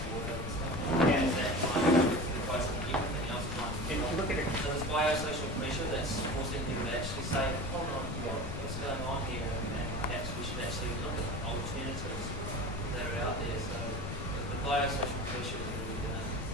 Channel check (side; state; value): left; noise; rumble, 4 dB below the sound